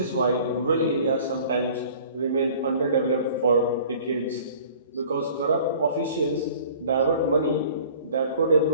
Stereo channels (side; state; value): both; inverted; correlation -0.48